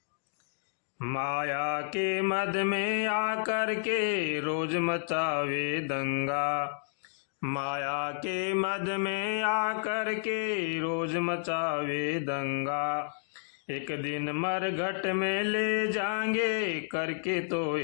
माया के मद में आकर के रोज मचावे दंगा। माया के मद में आकर के रोज मचावे दंगा। एक दिन मरघट में ले जाएंगे, करके तो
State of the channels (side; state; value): right; silent; digital silence